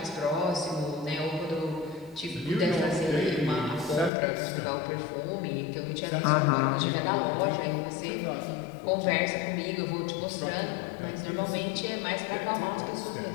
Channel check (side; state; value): right; drops out; at 4.1 s